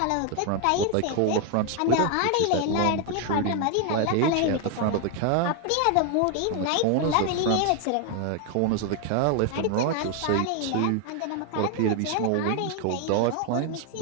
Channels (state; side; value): different; both; correlation 0.01